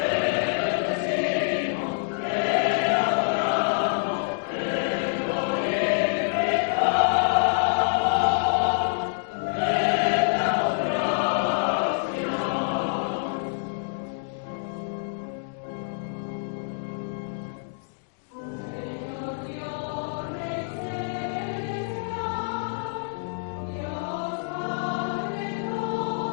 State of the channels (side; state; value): right; silent; digital silence